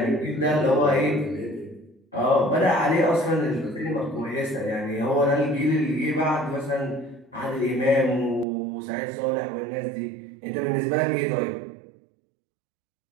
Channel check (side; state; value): left; drops out; at 8.5 s